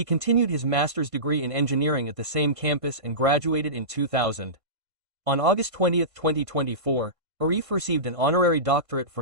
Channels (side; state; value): left; late; 1.5 ms